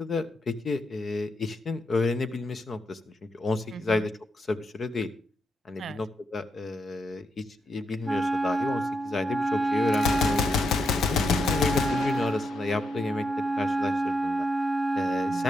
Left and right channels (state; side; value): normal; both; correlation 0.83